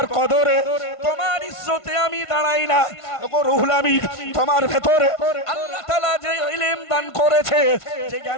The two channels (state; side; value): late; right; 1.5 ms